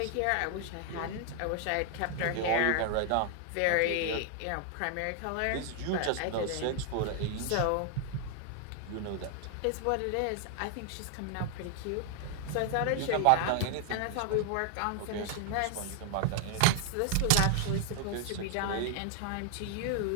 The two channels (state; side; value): different; both; correlation 0.00